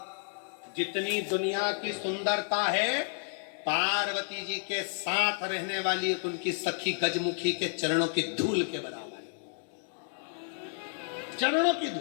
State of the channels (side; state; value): right; silent; 57 dB below the other